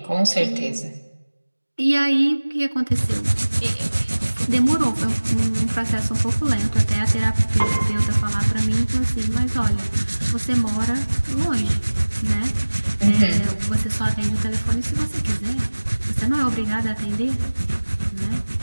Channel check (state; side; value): inverted; both; correlation -1.00